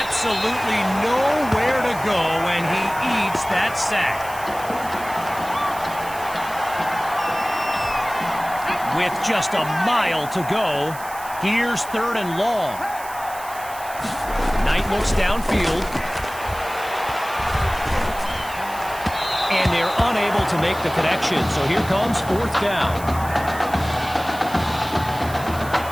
nowhere to go, and he eats that sack. With just a mile to go, here's third and long. Knight looks downfield. And they're unable to make the connection, so here comes fourth down.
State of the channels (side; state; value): right; noise; hiss, 15 dB below the sound